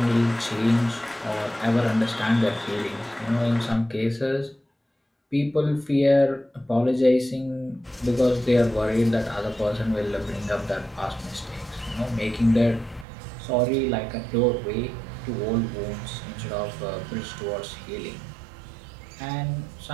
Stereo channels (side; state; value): left; drops out; at 13.1 s